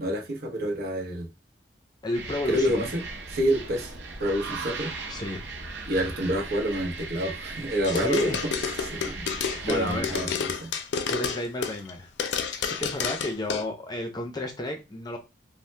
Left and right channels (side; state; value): both; normal; correlation 0.47